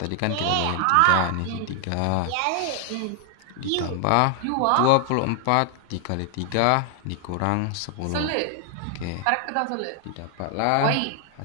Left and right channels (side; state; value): both; different; correlation 0.00